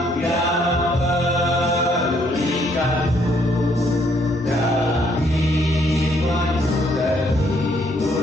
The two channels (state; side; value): normal; both; correlation 0.68